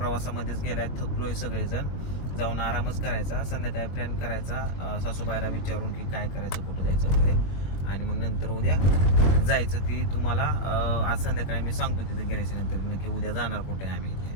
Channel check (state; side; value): late; right; 22 ms